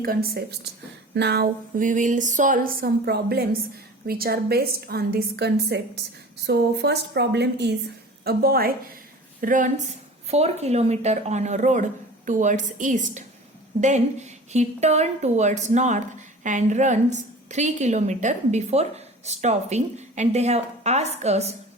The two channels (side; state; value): both; normal; correlation 0.40